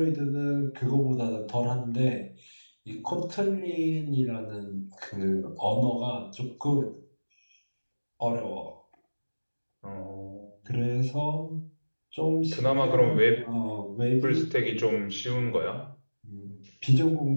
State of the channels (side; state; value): both; inverted; correlation -1.00